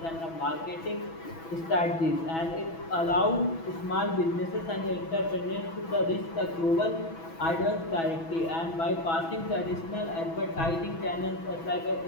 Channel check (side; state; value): right; late; 6.1 ms